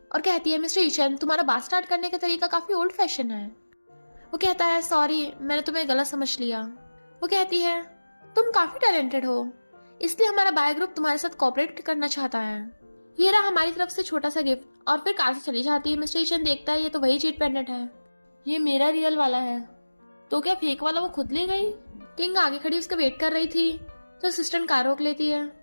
और कहती है मिस्टर यीचन तुम्हारा बात स्टार्ट करने का तरीका काफी ओल्ड फैशन है। वो कहता है सॉरी मैंने तुम्हें गलत समझ लिया। वो कहती है तुम काफी टैलेंटेड हो, इसलिए हमारा बाय ग्रुप तुम्हारे साथ कोऑपरेट करना चाहता है। ये रहा हमारी तरफ से छोटा सा गिफ्ट। और फिर कार से चली जाती है। मिस्टर यीचन देखता है ये तो वही जेट पेंडेंट है, ये मेरा रियल वाला है। तो क्या फेक वाला वो खुद ले गई? किंग आगे खड़ी उसका वेट कर रही थी तो असिस्टेंट कार रोक लेती है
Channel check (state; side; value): inverted; both; correlation -1.00